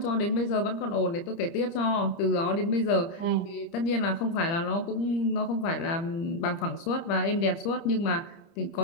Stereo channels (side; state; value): right; late; 30 ms